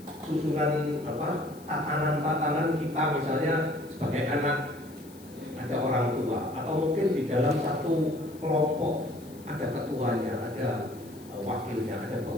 apa? Tatanan-tatanan kita, misalnya sebagai anak ada orang tua, atau mungkin di dalam satu kelompok ada ketuanya, ada wakilnya, ada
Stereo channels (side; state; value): left; noise; hiss, 23 dB below the sound